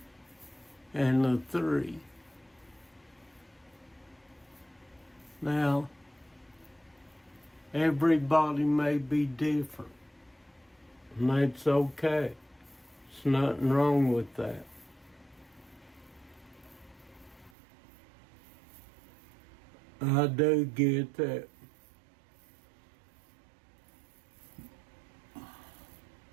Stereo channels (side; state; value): left; drops out; at 17.5 s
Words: and a 3. Now, everybody may be different, and that's okay. There's nothing wrong with that. I do get that.